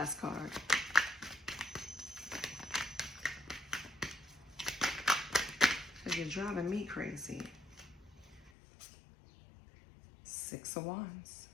card. Because you're driving me crazy. Six of Wands.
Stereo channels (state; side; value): drops out; right; at 8.5 s